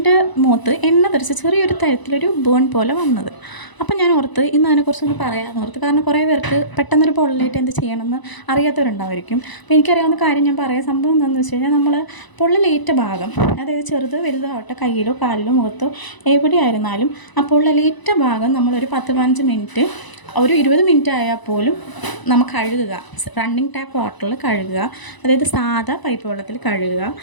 മുഖത്ത് എണ്ണ തെറിച്ച് ചെറിയൊരു തരത്തിലൊരു ബേൺ പോലെ വന്നത്. അപ്പം ഞാൻ ഓർത്ത് ഇന്ന് അതിനെക്കുറിച്ചൊന്ന് പറയാമെന്ന് ഓർത്ത്. കാരണം കുറേ പേർക്ക് പെട്ടെന്നൊരു പൊള്ളലേറ്റ് എന്ത് ചെയ്യണമെന്ന് അറിയാത്തവരുണ്ടാവുമായിരിക്കും. അപ്പോൾ എനിക്കറിയാവുന്ന കാര്യം ഞാൻ പറയാം. സംഭവം എന്താണെന്ന് വെച്ച് കഴിഞ്ഞാൽ നമ്മൾ പൊള്ളലേറ്റ ഭാഗം, അതായത് ചെറുത് വലുതാവട്ടെ, കയ്യിലോ കാലിലോ മുഖത്തോ എവിടെയായിരുന്നാലും ആ പൊള്ളലേറ്റ ഭാഗം നമ്മളൊരു 10-15 മിനിറ്റ്, ഒരു 20 മിനിറ്റ് ആയാൽ പോലും നമ്മൾ കഴുകുക. റണ്ണിങ് ടാപ്പ് വാട്ടറിൽ കഴുകുക, അതായത് സാധാ പൈപ്പ് വെള്ളത്തിൽ കഴുകുക.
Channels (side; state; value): right; late; 1.0 ms